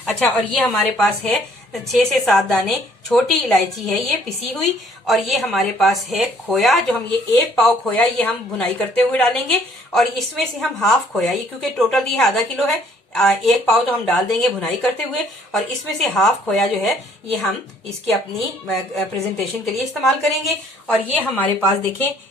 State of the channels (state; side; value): normal; both; correlation 0.61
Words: अच्छा, और ये हमारे पास है 6 से 7 दाने छोटी इलायची है ये पिसी हुई, और ये हमारे पास है खोया, जो हम ये 1 पाव खोया ये हम भुनाई करते हुए डालेंगे, और इसमें से हम हाफ खोया, ये क्योंकि टोटल ये आधा किलो है, 1 पाव तो हम डाल देंगे भुनाई करते हुए, और इसमें से हाफ खोया जो है ये हम इसकी अपनी प्रेजेंटेशन के लिए इस्तेमाल करेंगे। और ये हमारे पास देखें